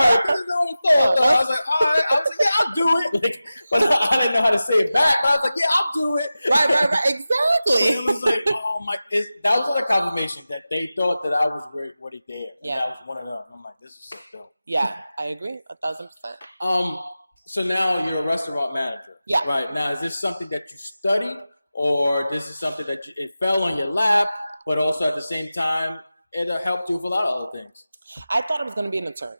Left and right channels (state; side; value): inverted; both; correlation -0.95